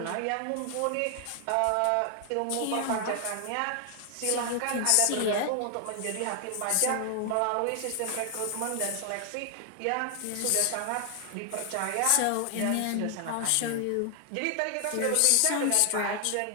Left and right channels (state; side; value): different; both; correlation 0.00